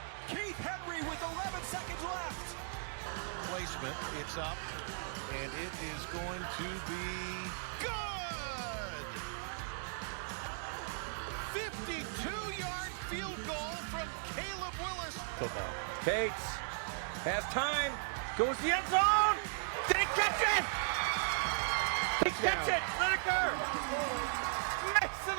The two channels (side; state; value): left; silent; digital silence